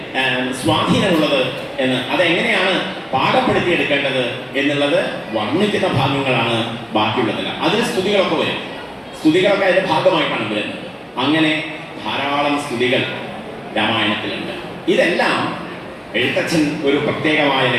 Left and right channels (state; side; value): identical; both; correlation 1.00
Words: സ്വാധീനമുള്ളത് എന്ന്, അതെങ്ങനെയാണ് പാകപ്പെടുത്തിയെടുക്കേണ്ടത് എന്നുള്ളത് വർണ്ണിക്കുന്ന ഭാഗങ്ങളാണ് ബാക്കിയുള്ളതെല്ലാം. അതിൽ സ്തുതികളൊക്കെ വരും. സ്തുതികളൊക്കെ അതിൻ്റെ ഭാഗമായിട്ടാണ് വരുന്നത്. അങ്ങനെ ധാരാളം സ്തുതികൾ രാമായണത്തിലുണ്ട്. ഇതെല്ലാം എഴുത്തച്ഛൻ ഒരു പ്രത്യേകമായ